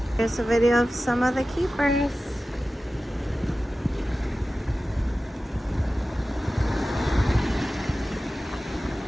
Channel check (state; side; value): normal; both; correlation 0.95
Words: Here's a video of some of the keepers.